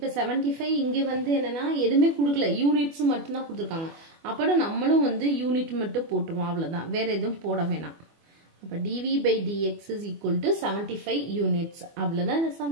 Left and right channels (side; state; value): left; late; 24 ms